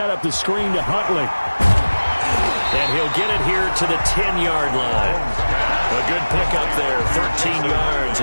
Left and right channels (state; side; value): inverted; both; correlation -1.00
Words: up the screen to Huntley. And he'll get it here to the 10-yard line. A good pickup there, 13 yards